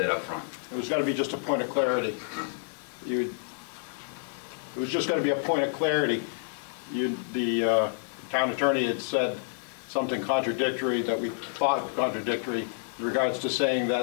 up front. It was going to be just a point of clarity. It was just going to be a point of clarity. The town attorney had said something contradictory that we thought contradictory in regards to saying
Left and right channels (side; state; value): right; silent; digital silence